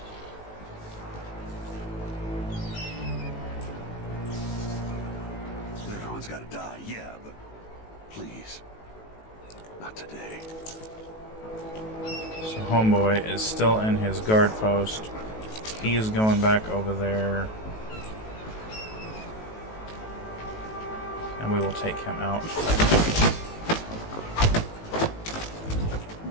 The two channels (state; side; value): late; right; 18 ms